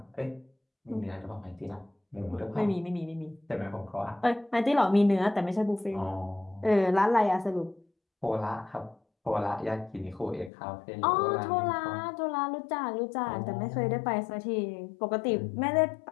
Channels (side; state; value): right; drops out; at 10.5 s